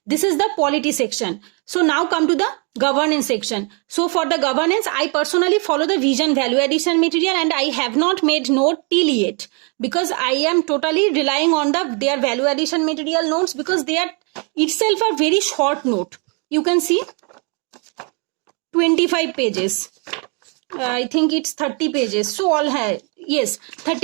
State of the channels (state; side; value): quieter; left; 35.7 dB